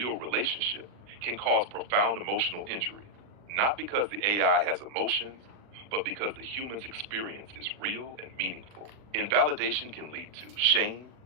relationship, can cause profound emotional injury. Not because the AI has emotions, but because the human's experience is real and meaningful. Invalidation can lead to shame,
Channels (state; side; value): late; left; 39 ms